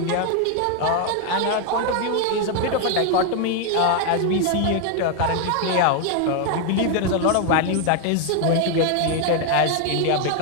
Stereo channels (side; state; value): both; different; correlation 0.01